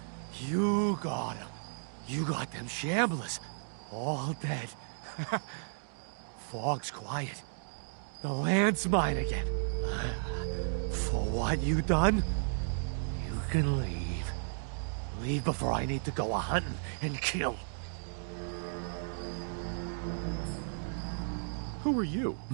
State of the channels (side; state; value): left; silent; digital silence